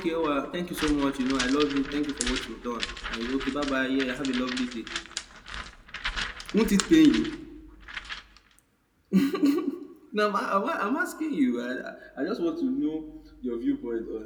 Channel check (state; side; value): identical; both; correlation 1.00